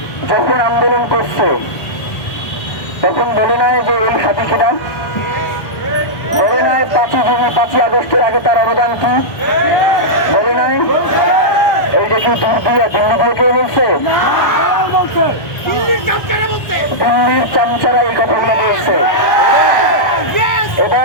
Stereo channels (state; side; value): late; right; 1.4 ms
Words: যখন আন্দোলন করছে তখন বলে নাই যে এই হাদি কিনা, বলে নাই 5 আগস্টের আগে তার অবদান কি, বলে নাই এই যে কি দিল্লি দিয়ে কেউ বলছে, দিল্লির চামচারা এই কথাগুলো বলছে।